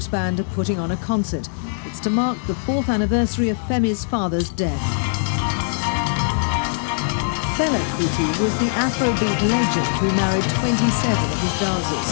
Band are putting on a concert. It's to mark the 4th anniversary of Femi's father's death. Fela Kuti was the Afrobeat legend who married 27 of his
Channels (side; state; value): right; silent; digital silence